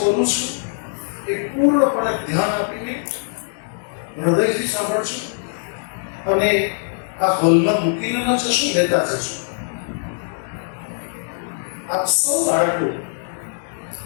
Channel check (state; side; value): silent; right; digital silence